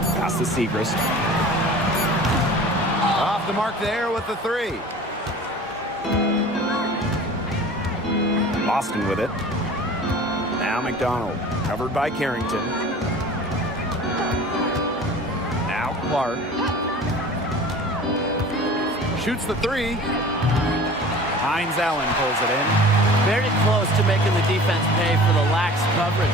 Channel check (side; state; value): both; normal; correlation 0.42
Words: Pass to Segrist. Off the mark there with the 3. Boston with it. Now McDonald, covered by Carrington. Now Clark. Shoots the three. Hines Allen pulls it in. Very close to making the defense pay for the lax coverage